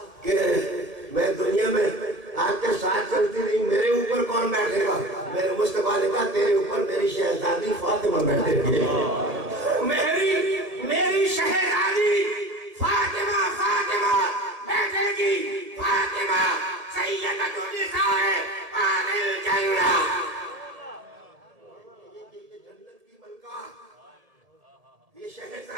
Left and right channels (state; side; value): late; left; 1.7 ms